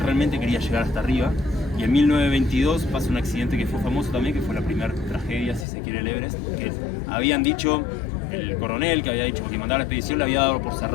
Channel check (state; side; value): drops out; right; at 5.7 s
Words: realmente quería llegar hasta arriba, y en 1922 pasa un accidente que fue famoso también, que fue la primera tragedia, si se quiere, el Everest, que habían dicho, el coronel que había dicho que mandaba la expedición le había dado por